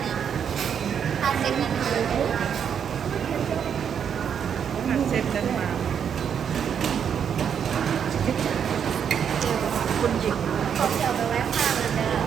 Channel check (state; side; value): quieter; left; 7.9 dB